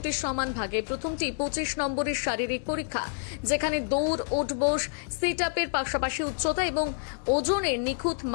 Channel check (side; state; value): right; silent; 59 dB below the other